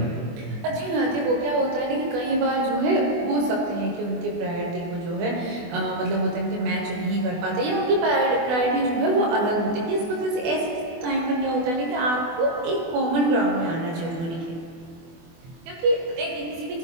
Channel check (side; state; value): left; late; 24 ms